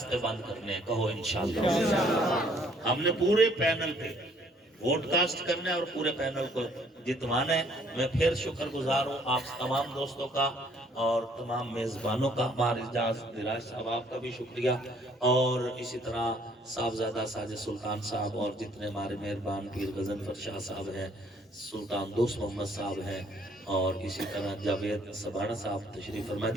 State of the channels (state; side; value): normal; both; correlation 0.62